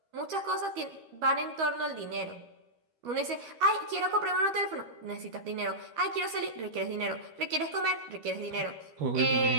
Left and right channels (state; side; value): late; left; 13 ms